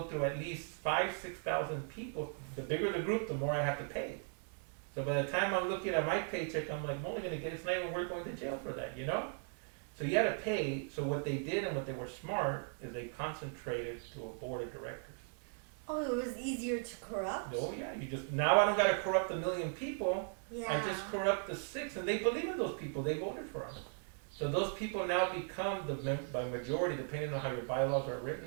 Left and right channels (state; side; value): silent; left; 53 dB below the other